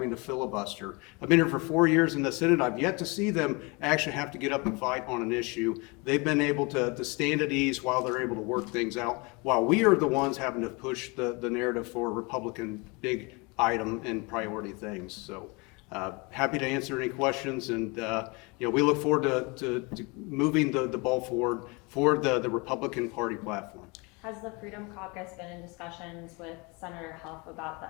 to filibuster. I've been here for 4 years in the Senate. I've yet to see them actually have to get up and fight on an issue. They've been able to stand at ease while they're able to work things out, while we are the ones having to push the narrative for Republican big item and priority things. So happy to answer any questions, and we look forward to moving the ball forward for the Republican Party platform. Has the Freedom Caucus been in discussions with Senator Huff about the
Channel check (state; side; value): quieter; right; 28.2 dB